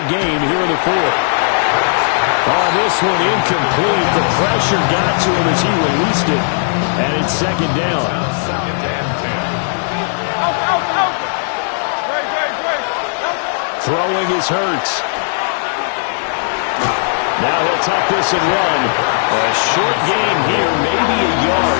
game here in the fourth. Oh, this one incomplete. The pressure got to him as he released it. And it's second down. Throwing is Hurts. Now he'll tuck this and run. A short gain here, maybe a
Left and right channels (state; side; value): silent; right; 68 dB below the other